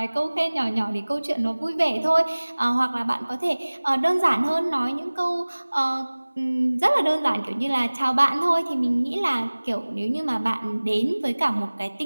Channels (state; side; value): inverted; both; correlation -1.00